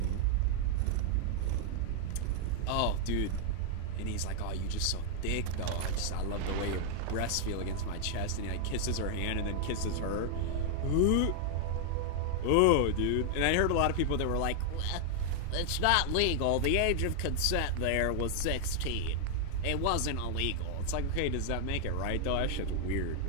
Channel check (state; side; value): different; both; correlation 0.00